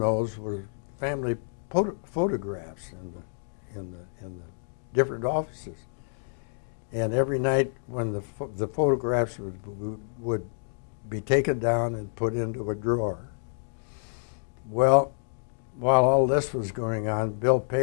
were family photographs in the different offices. And every night when the photographs would be taken down and put into a drawer. Well, while all this was going on, Bill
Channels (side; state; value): right; silent; digital silence